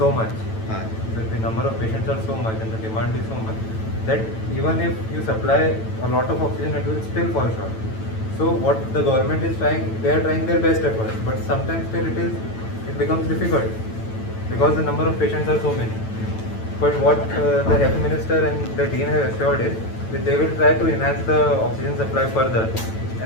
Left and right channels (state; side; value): late; right; 9.0 ms